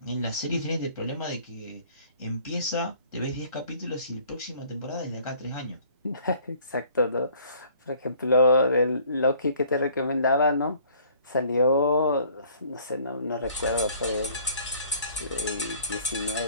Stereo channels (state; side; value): inverted; both; correlation -0.56